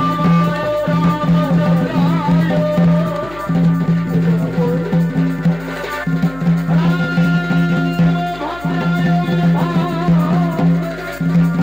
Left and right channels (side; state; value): left; noise; hum, 20 dB below the sound